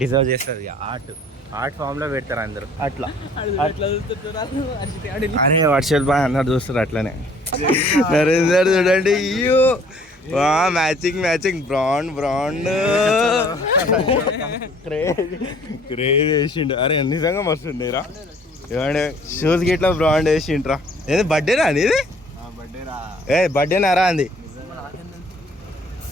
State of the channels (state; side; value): normal; both; correlation 0.56